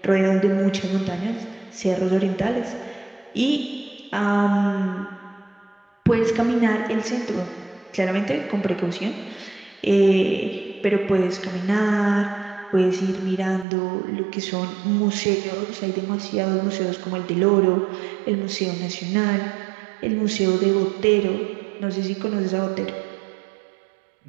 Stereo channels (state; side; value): drops out; left; at 13.7 s